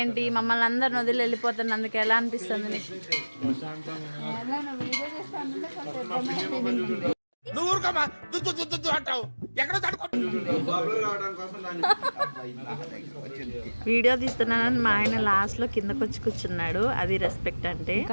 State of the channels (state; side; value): inverted; both; correlation -1.00